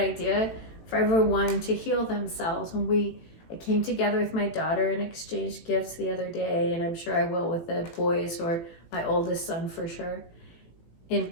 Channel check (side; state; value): right; late; 18 ms